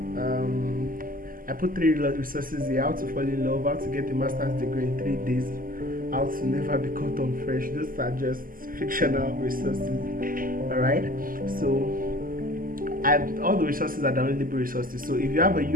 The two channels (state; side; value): late; left; 0.41 ms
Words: I put 3 resources here: how to fall in love, how to get a master's degree in 3 days, how to never be caught on fresh. Those are just fictional resources. Alright, so all the resources are downloadable resources. So if you have a